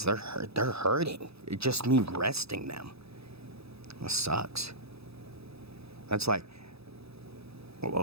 they're hurting. It just me resting them. That sucks. That's like,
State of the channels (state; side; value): late; left; 0.78 ms